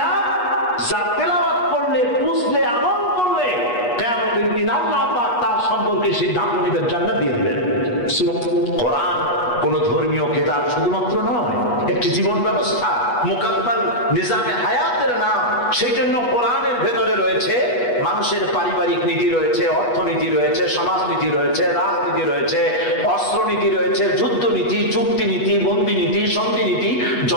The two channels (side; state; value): right; late; 8.3 ms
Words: যা তেলাওয়াত করলে, বুঝলে, আমল করলে কিয়ামতের দিন আল্লাহ পাক তার সম্পর্কে সিদ্ধান্ত নেবেন, জান্নাত দিয়ে দিবেন। কোরআন কোন ধর্মীয় কিতাব শুধুমাত্র নয়, একটি জীবন ব্যবস্থা, মুকাম্মাল নিজামে হায়াতের নাম। সেই জন্য কোরআনের ভেতরে রয়েছে মানুষের পারিবারিক নীতি রয়েছে, অর্থনীতি রয়েছে, সমাজনীতি রয়েছে, রাজনীতি রয়েছে, অস্ত্রনীতি রয়েছে, যুদ্ধনীতি, চুক্তি নীতি, বন্দি নীতি, সন্ধি নীতি,